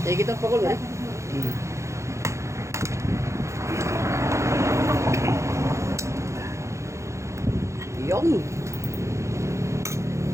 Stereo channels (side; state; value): left; late; 0.14 ms